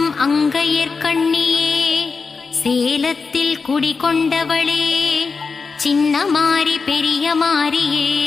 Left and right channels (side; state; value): right; quieter; 4.7 dB